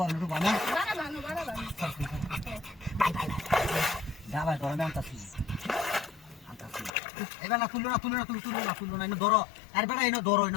বানা বাড়া বানো যা ভাই ধরে আনতাছি এবার না তুললো না এনে ধরো আর বেটা এনে ধরো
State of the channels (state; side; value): drops out; right; at 6.9 s